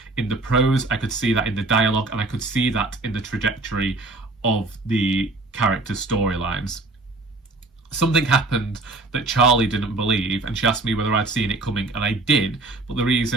in the prose, I could see that in the dialogue, and I could see that in the trajectory of the characters' storylines. Something happened that Charlie didn't believe, and she asked me whether I'd seen it coming, and I did. But the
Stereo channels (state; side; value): quieter; left; 3.0 dB